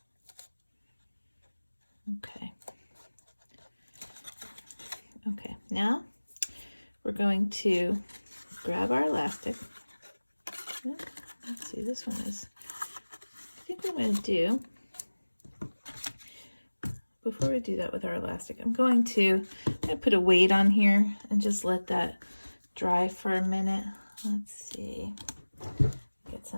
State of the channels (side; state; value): both; inverted; correlation -1.00